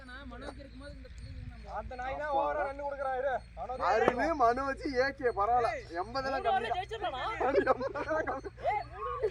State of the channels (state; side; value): identical; both; correlation 1.00